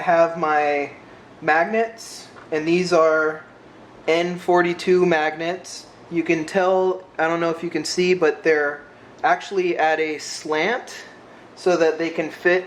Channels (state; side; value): identical; both; correlation 1.00